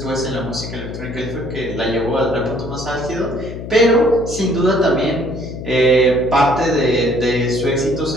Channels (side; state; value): left; noise; hum, 9 dB below the sound